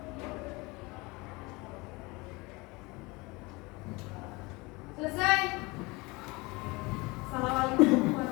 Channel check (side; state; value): right; quieter; 24.5 dB